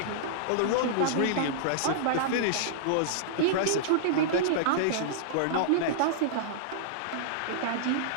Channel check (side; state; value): both; different; correlation -0.02